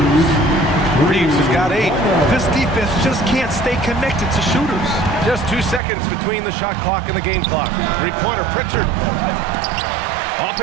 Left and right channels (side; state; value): left; drops out; at 5.8 s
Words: Reeves has got 8. This defense just can't stay connected to shooters. Just 2 seconds between the shot clock and the game clock. Three-pointer, Pritchard.